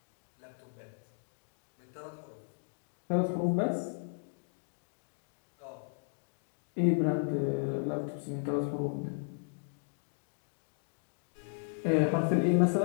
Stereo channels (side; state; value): right; silent; digital silence